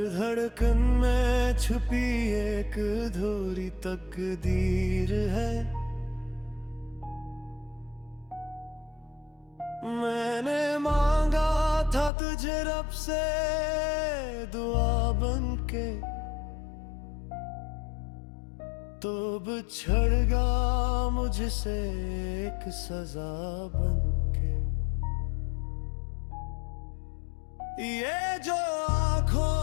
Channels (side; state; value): right; drops out; at 12.1 s